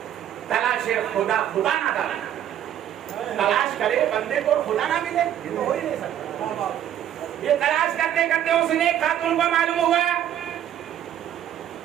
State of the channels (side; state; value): left; quieter; 10.8 dB